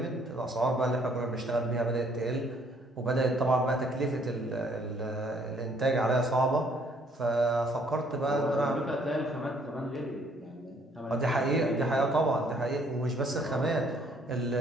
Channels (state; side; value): normal; both; correlation 0.64